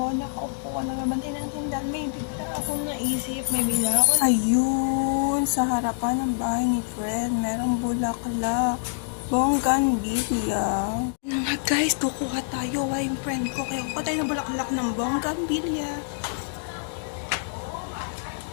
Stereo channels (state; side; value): silent; right; digital silence